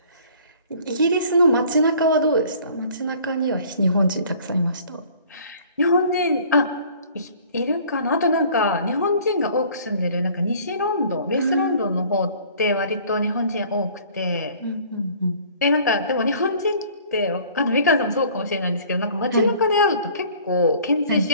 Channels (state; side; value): inverted; both; correlation -0.52